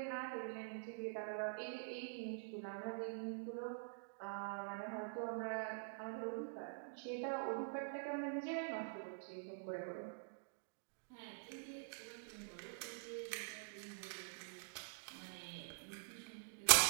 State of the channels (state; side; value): silent; left; digital silence